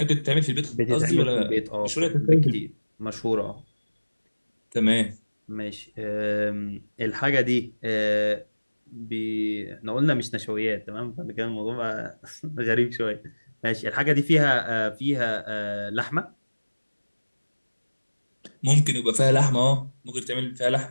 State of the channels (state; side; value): inverted; both; correlation -1.00